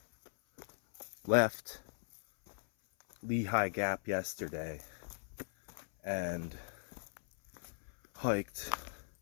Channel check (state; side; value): silent; right; 52 dB below the other